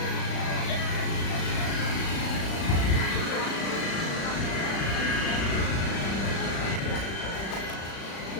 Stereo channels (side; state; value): right; late; 36 ms